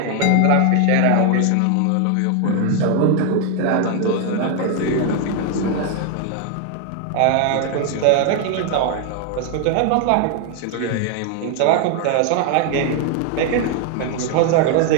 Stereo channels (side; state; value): both; different; correlation 0.00